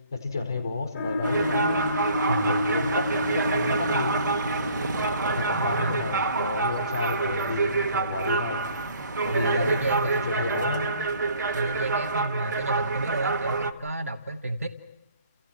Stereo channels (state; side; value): inverted; both; correlation -0.55